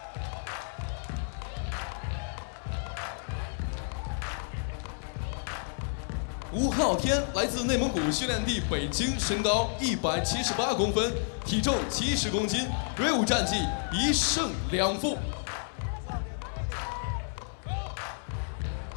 吴昊天来自内蒙古训练地北京，身高178公分，体重70公斤，锐舞战绩1胜2负。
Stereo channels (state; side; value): silent; right; 57 dB below the other